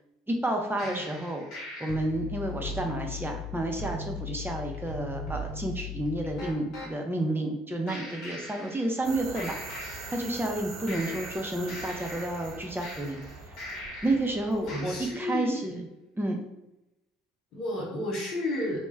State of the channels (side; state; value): both; normal; correlation 0.69